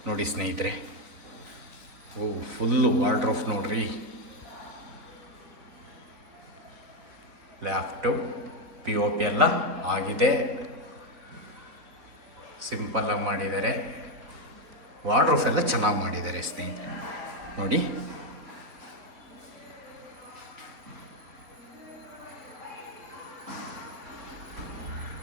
ನೋಡಿ ಸ್ನೇಹಿತರೆ. ಓ, ಫುಲ್ಲು ವಾರ್ಡ್ರೋಬ್ ನೋಡ್ರಿ. ಲ್ಯಾಪ್ಟಾಪ್ POP ಎಲ್ಲ ಆಗಿದೆ, ಸಿಂಪಲ್ಲಾಗಿ ಮಾಡಿದ್ದಾರೆ. ವಾರ್ಡ್ರೋಬ್ ಎಲ್ಲ ಚೆನ್ನಾಗಿ ಮಾಡಿದ್ದಾರೆ ಸ್ನೇಹಿತರೆ ನೋಡಿ.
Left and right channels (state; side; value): late; left; 4.0 ms